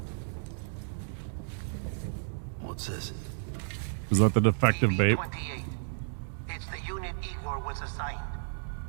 What's this? Is that the defective babe? It's the unit Igor was assigned.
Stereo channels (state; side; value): silent; left; digital silence